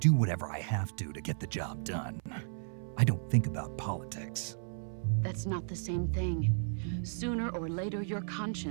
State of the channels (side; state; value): left; silent; 55 dB below the other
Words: whatever I have to get the job done. I don't think about politics. That's not the same thing. Sooner or later, your